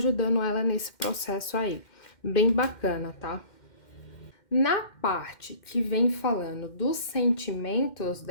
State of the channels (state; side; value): late; right; 2.1 ms